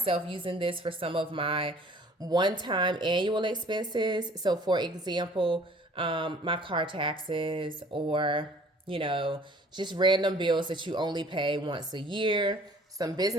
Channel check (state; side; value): normal; both; correlation 0.52